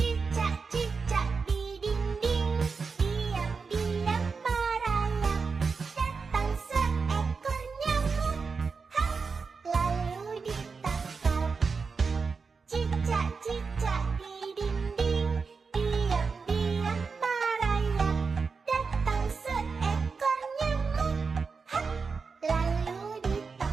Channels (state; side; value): quieter; left; 4.9 dB